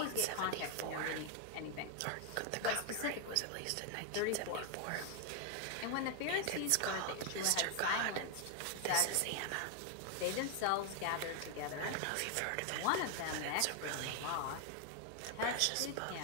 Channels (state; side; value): different; both; correlation 0.00